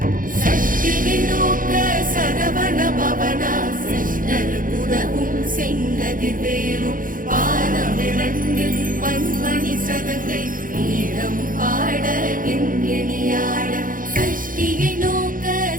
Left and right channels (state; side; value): late; left; 0.40 ms